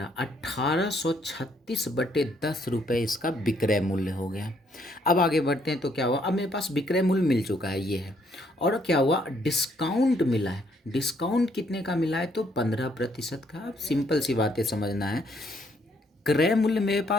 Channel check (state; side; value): normal; both; correlation 0.69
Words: 1836/10 इसका विक्रय मूल्य हो गया। अब आगे बढ़ते हैं तो क्या हुआ, अब मेरे पास विक्रय मूल्य मिल चुका है ये है, और क्या हुआ डिस्काउंट मिला है। डिस्काउंट कितने का मिला है तो 15% का। अब सिंपल सी बातें समझना है, क्रय मूल्य मेरे